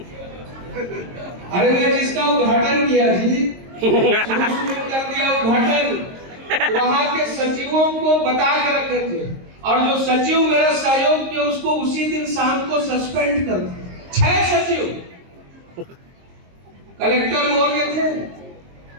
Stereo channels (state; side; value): late; left; 22 ms